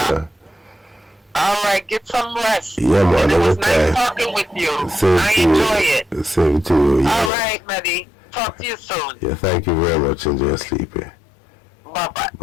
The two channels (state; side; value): drops out; right; at 7.3 s